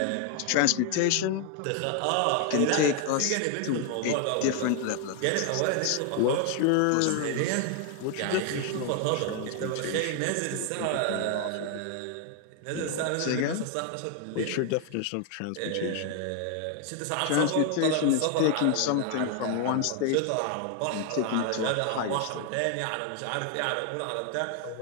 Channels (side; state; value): both; different; correlation 0.00